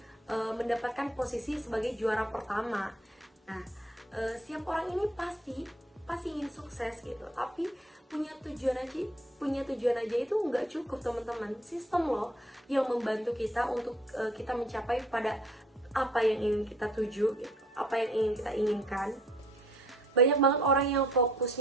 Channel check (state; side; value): normal; both; correlation 0.60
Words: mendapatkan posisi sebagai juara pertama. Nah, setiap orang ini pasti ingin sukses gitu, tapi punya tujuan aja itu nggak cukup teman-teman. Sistem loh yang membantu kita untuk kita mencapai pada apa yang ingin kita tuju gitu, apa yang ingin kita inginkan. Banyak banget orang yang